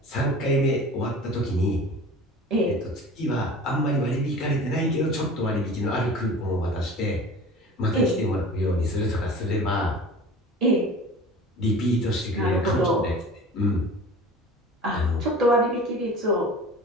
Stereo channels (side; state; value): both; normal; correlation 0.39